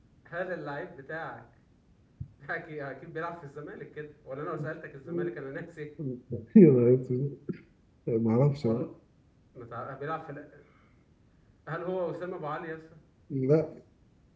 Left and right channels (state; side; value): identical; both; correlation 1.00